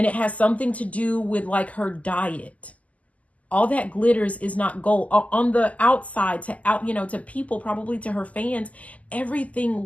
it has something to do with like her diet. All that glitters is not gold. On the outside, you know, to people, probably to her fans,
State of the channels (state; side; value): late; right; 0.072 ms